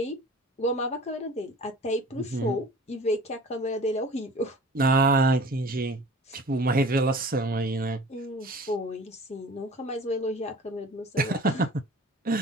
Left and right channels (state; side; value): normal; both; correlation 0.43